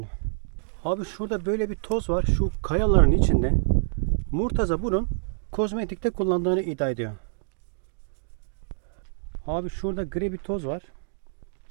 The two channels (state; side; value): silent; left; digital silence